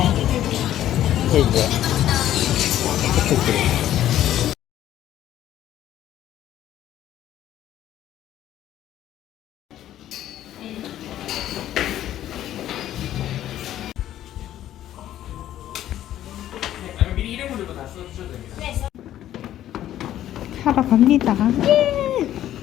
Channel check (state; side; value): quieter; right; 12.3 dB